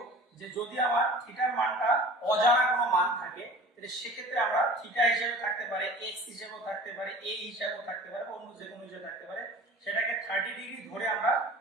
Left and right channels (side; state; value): both; normal; correlation 0.41